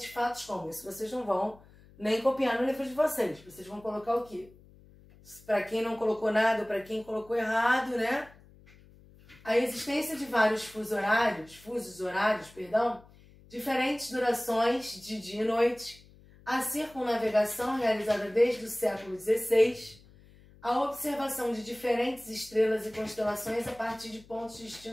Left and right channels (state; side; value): noise; left; hum, 25 dB below the sound